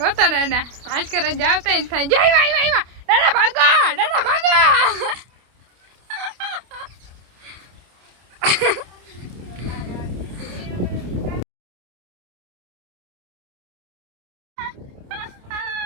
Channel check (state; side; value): late; left; 28 ms